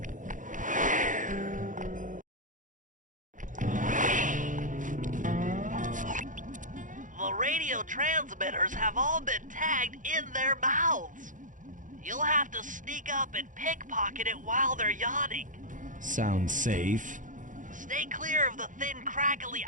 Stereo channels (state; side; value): late; left; 0.38 ms